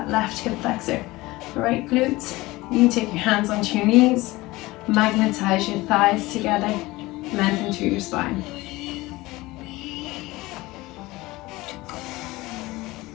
left hip flexor, right glutes, You can take your hands onto your knees, magnetize your thighs together, lengthen through your spine.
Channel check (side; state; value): right; quieter; 20.1 dB